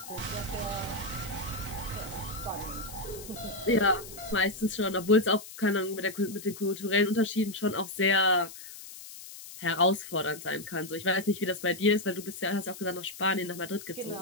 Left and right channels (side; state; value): left; noise; hiss, 14 dB below the sound